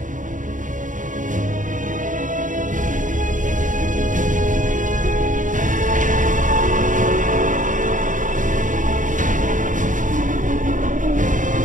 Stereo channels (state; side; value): late; left; 0.37 ms